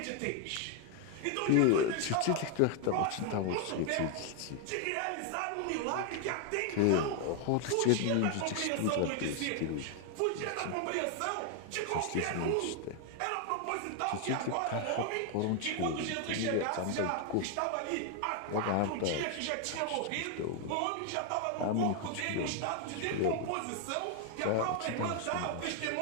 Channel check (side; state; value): both; different; correlation 0.00